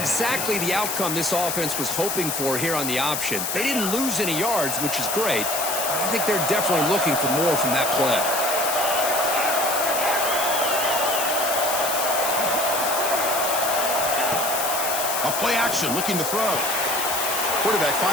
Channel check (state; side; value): noise; left; hiss, 2 dB below the sound